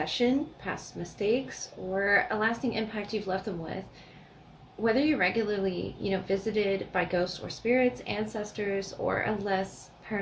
past mistakes, or a lasting impact you've left them with. Whether you're regularly, visited by ghosts or spirits, ancestors, or a less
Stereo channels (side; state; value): both; identical; correlation 1.00